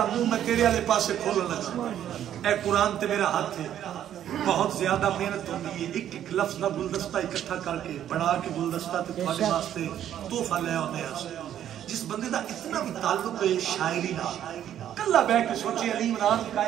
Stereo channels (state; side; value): quieter; left; 10.7 dB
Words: منہ میں تیرے والے پاسے کھولن لگا اے قرآن تے میرا ہاتھ ہے بہت زیادہ محنت ہوتی ہے ایک ایک لفظ دا گلدستہ اکٹھا کر کے بڑھا کے گلدستہ تے تمہارے واسطے تحفہ لے آنے ہیں جس بندے دا اتنا بھی تعلق ہے شاعری نہ کلا بہ کے سوچے علی عمران